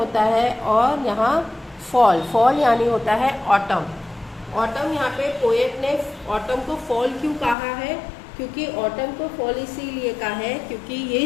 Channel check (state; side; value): drops out; right; at 7.6 s